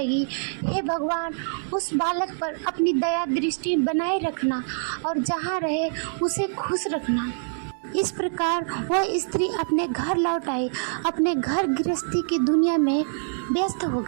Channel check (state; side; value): silent; left; digital silence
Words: हे भगवान, उस बालक पर अपनी दया दृष्टि बनाए रखना और जहाँ रहे उसे खुश रखना। इस प्रकार वह स्त्री अपने घर लौट आई, अपने घर गृहस्थी की दुनिया में व्यस्त हो